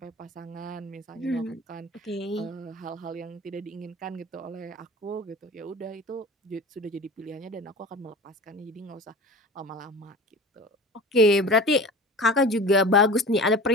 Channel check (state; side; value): normal; both; correlation 0.36